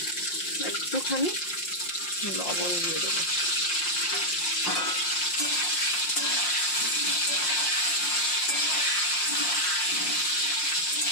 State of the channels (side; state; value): right; late; 5.6 ms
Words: একটুখানি লবণ দিয়ে দেবো।